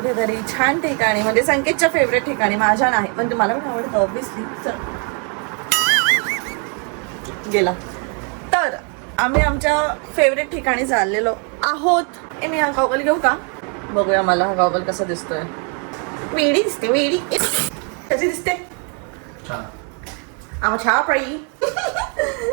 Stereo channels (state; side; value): quieter; left; 38.4 dB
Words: छान ठिकाणी, म्हणजे संकेतच्या फेवरेट ठिकाणी. माझ्या नाही पण मला पण आवडतं ऑब्विसली. गेला तर आम्ही आमच्या फेवरेट ठिकाणी चाललेलो आहोत. मी हा गॉगल घेऊ का? बघूया मला हा गॉगल कसा दिसतोय. वेडी दिसते. वेडी कशी दिसते? छान पडी.